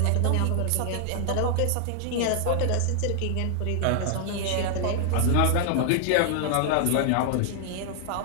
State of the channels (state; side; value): different; both; correlation 0.00